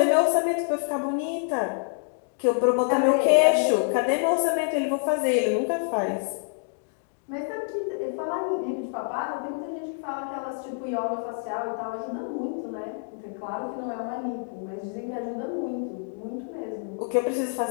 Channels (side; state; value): right; silent; digital silence